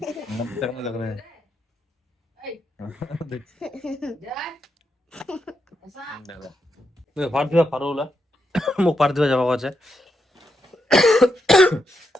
रहा है फाड़ दिया फाड़ोला मुख फाड़ दिया जब आवाज है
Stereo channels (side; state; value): both; normal; correlation 0.83